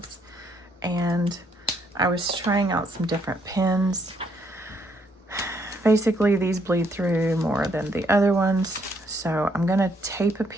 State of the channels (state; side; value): normal; both; correlation 0.71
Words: and I was trying out some different pens. Basically, these bleed through more than the other ones, so I'm going to tape a